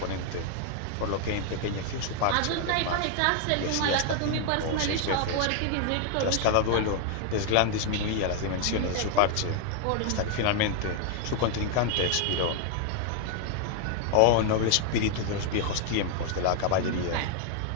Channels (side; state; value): both; different; correlation 0.00